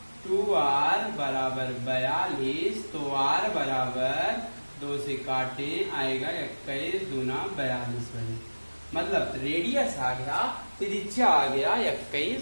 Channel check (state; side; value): inverted; both; correlation -1.00